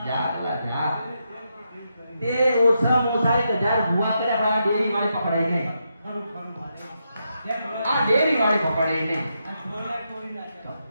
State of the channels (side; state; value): both; inverted; correlation -0.83